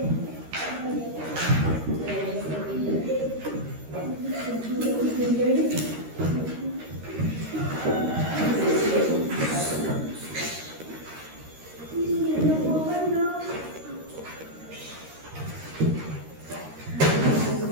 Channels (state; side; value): late; left; 13 ms